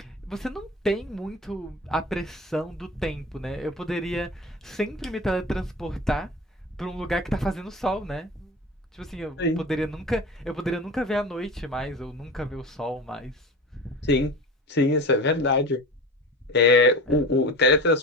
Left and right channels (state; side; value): normal; both; correlation 0.32